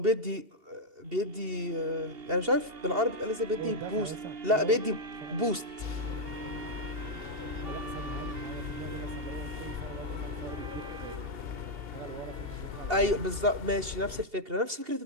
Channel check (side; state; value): left; late; 2.7 ms